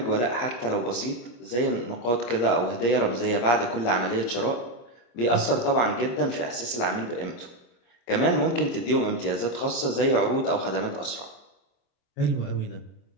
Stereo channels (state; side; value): late; right; 25 ms